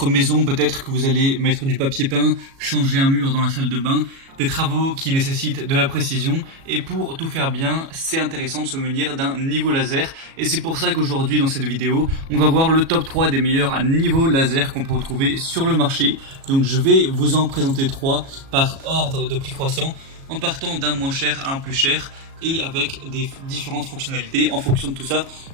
maison, peut-être que vous allez mettre du papier peint, changer un mur dans la salle de bain, des travaux qui nécessitent de la précision, et pour tout faire bien, c'est intéressant de se munir d'un niveau laser, et c'est pour ça qu'aujourd'hui dans cette vidéo, on va voir le top 3 des meilleurs niveaux laser qu'on peut retrouver sur le marché. Donc je vais vous en présenter 3 par ordre de prix croissant, en partant d'un moins cher à un plus cher, et avec des différentes fonctionnalités. En fonction de tout ça,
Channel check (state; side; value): late; left; 37 ms